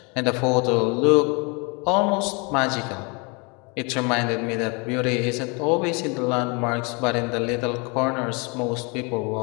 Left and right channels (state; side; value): quieter; right; 30.9 dB